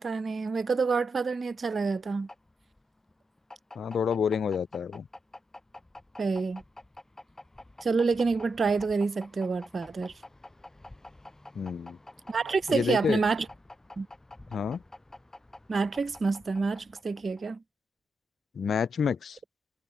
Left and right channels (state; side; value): normal; both; correlation 0.85